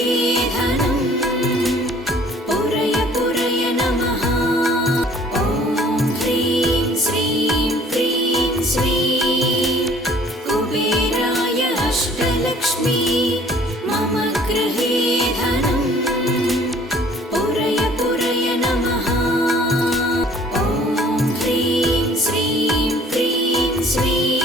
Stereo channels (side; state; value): both; normal; correlation 0.54